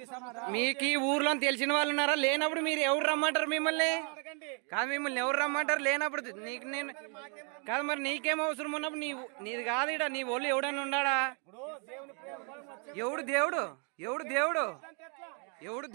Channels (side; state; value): left; quieter; 38.1 dB